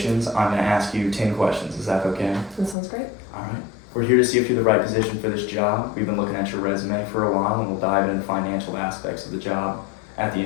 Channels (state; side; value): drops out; right; at 2.8 s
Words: I'm going to ask you 10 questions. Is that okay? That sounds great. All right. We're here to see if you're the right position for this job. We've been looking at your resume for a while, and we'll dive into financial aspects of the job at the